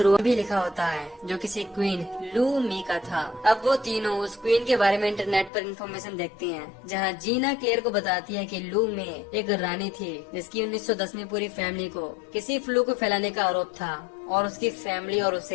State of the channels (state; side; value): drops out; right; at 5.5 s